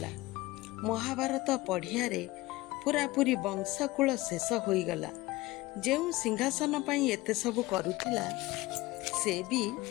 ମହାଭାରତ ପଢ଼ିଆରେ ପୁରାପୁରି ବଂଶକୂଳ ଶେଷ ହୋଇଗଲା। ଯେଉଁ ସିଂହାସନ ପାଇଁ ଏତେ ସବୁ କରୁଥିଲା ସେ ବି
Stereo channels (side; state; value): right; quieter; 19.6 dB